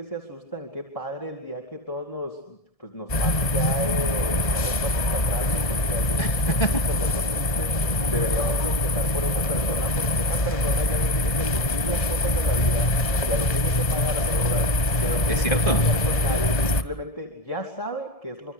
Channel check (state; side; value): late; right; 1.7 ms